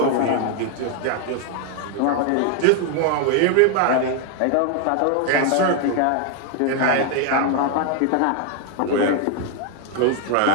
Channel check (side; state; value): both; different; correlation 0.01